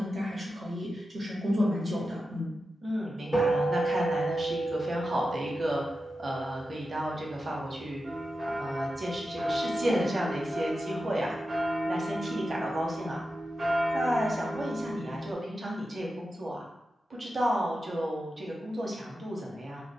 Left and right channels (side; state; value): both; normal; correlation 0.91